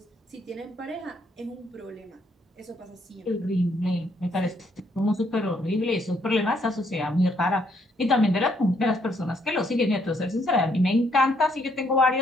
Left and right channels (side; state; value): both; normal; correlation 0.71